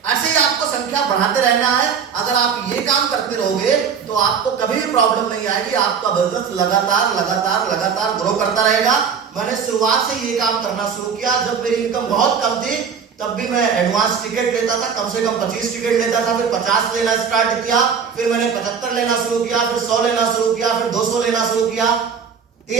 ही आपको संख्या बढ़ाते रहना है। अगर आप ये काम करते रहोगे तो आपको कभी भी प्रॉब्लम नहीं आएगी, आपका बिजनेस लगातार लगातार लगातार ग्रो करता रहेगा। मैंने शुरुआत से ये काम करना शुरू किया। जब मेरी इनकम बहुत कम थी तब भी मैं एडवांस टिकट लेता था, कम से कम 25 टिकट लेता था, फिर 50 लेना स्टार्ट किया, फिर मैंने 75 लेना शुरू किया, फिर 100 लेना शुरू किया, फिर 200 लेना शुरू किया,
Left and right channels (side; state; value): left; quieter; 6.7 dB